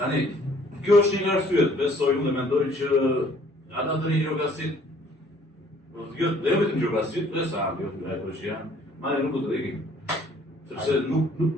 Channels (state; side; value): normal; both; correlation 0.59